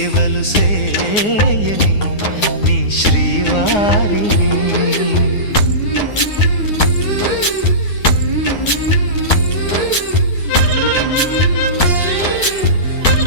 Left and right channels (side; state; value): right; late; 9.6 ms